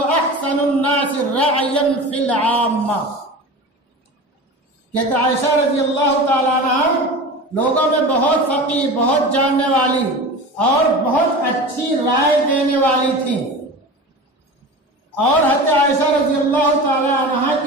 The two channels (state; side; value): normal; both; correlation 0.32